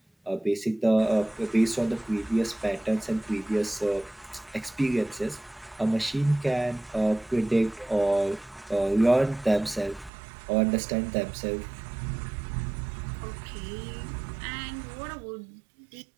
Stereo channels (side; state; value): left; drops out; at 10.1 s